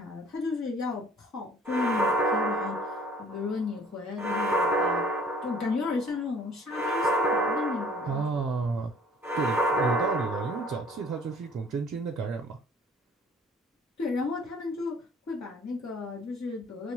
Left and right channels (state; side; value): normal; both; correlation 0.54